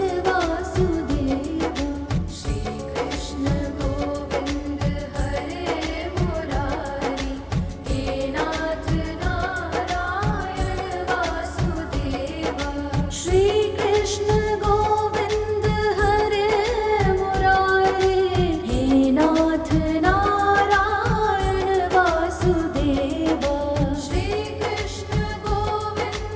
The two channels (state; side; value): identical; both; correlation 1.00